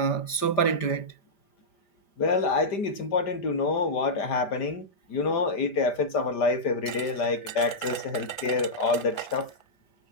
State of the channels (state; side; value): late; right; 5.0 ms